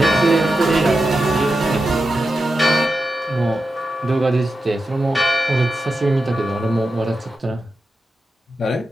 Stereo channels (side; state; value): both; normal; correlation 0.90